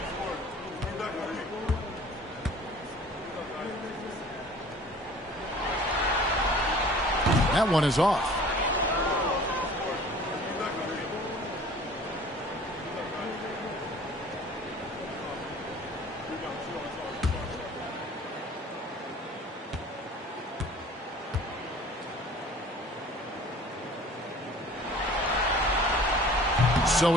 That one is off. So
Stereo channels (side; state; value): both; normal; correlation 0.47